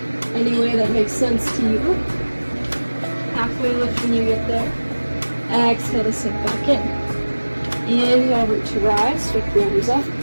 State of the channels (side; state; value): both; inverted; correlation -1.00